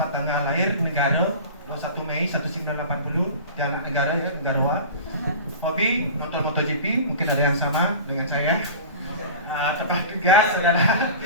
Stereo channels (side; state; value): both; inverted; correlation -0.35